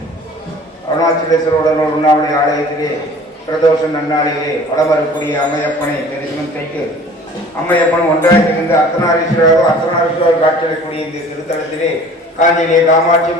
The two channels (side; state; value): both; normal; correlation 0.47